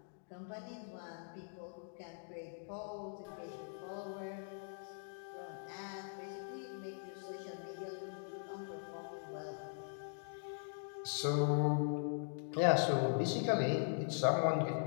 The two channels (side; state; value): right; silent; digital silence